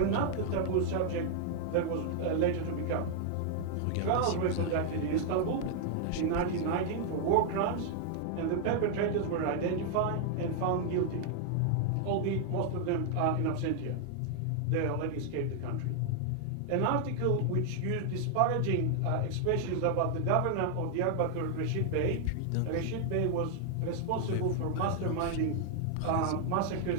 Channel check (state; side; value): different; both; correlation 0.00